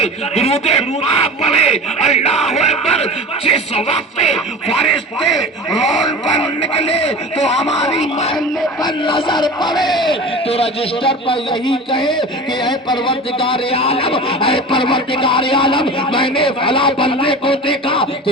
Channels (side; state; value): both; normal; correlation 0.34